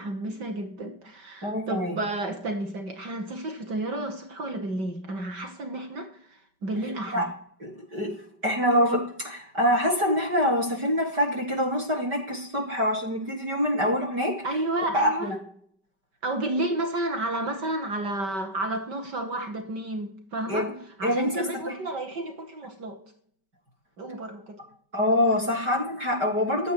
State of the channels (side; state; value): left; late; 5.2 ms